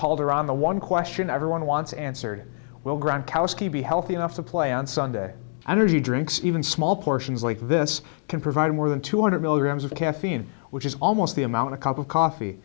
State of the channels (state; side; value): silent; right; digital silence